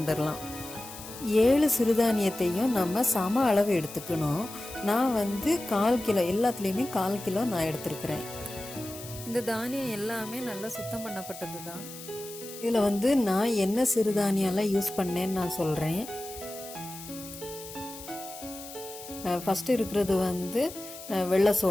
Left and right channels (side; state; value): left; noise; hiss, 14 dB below the sound